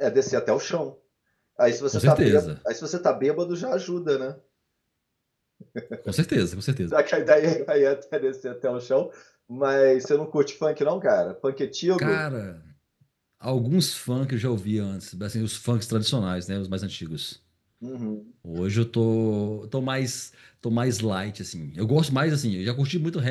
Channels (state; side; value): identical; both; correlation 1.00